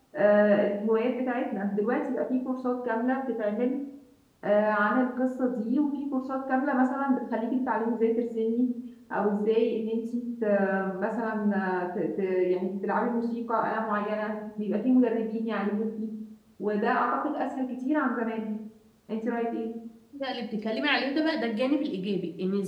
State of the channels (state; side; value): identical; both; correlation 1.00